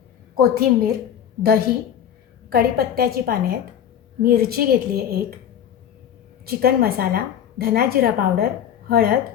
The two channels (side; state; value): right; quieter; 9.5 dB